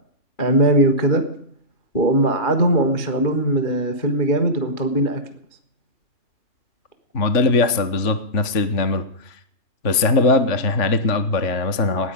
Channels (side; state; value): right; late; 3.4 ms